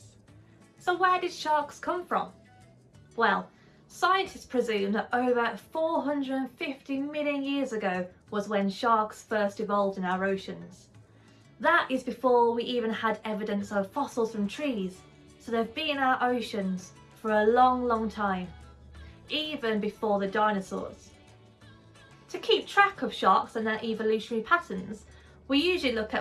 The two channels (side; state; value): both; identical; correlation 1.00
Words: So where did sharks come from? Well, scientists presume that over 450 million years ago was when sharks first evolved in our oceans. That is before we even had evidence of fossils from trees, so they've been in our oceans for a long time, even before the dinosaurs. To keep track of sharks and their evolutionary patterns, we usually look